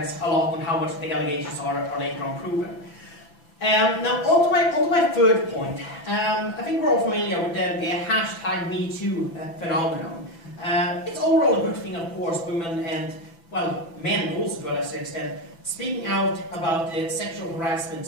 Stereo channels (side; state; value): right; late; 6.0 ms